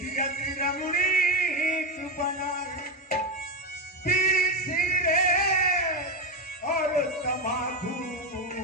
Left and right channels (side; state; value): both; normal; correlation 0.10